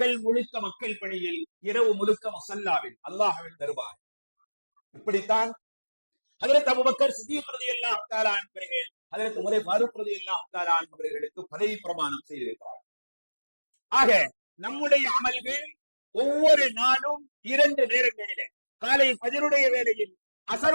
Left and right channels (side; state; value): both; inverted; correlation -1.00